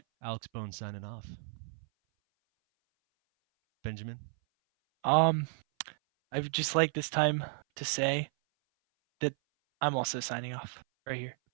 Alex Bone signing off. Benjamin. Um, I would just like this time to say that I'm also signing off right here.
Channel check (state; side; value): silent; left; 56 dB below the other